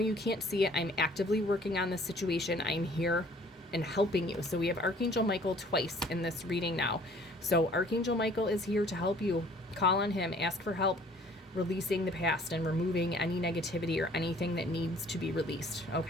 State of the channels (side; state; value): both; normal; correlation 0.55